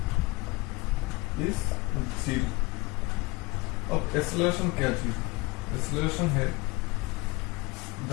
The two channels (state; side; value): quieter; right; 23.9 dB